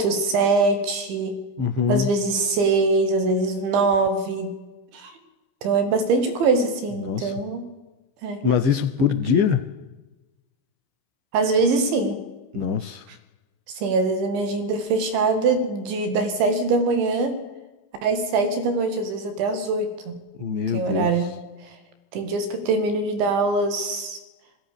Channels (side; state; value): left; late; 15 ms